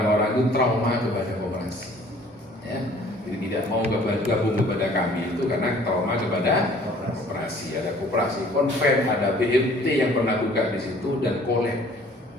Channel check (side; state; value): both; normal; correlation 0.54